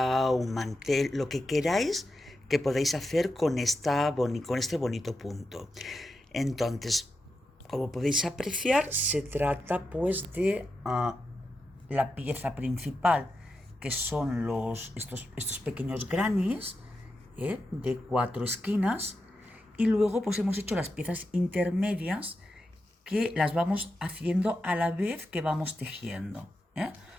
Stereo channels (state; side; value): normal; both; correlation 0.88